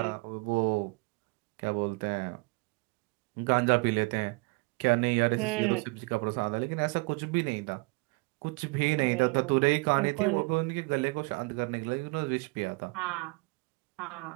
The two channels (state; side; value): quieter; left; 27.7 dB